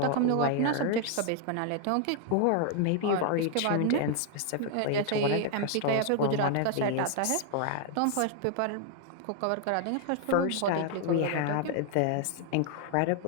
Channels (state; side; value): different; both; correlation 0.00